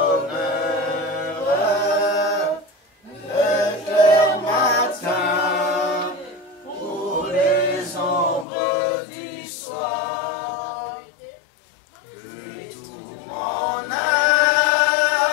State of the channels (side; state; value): right; drops out; at 8.5 s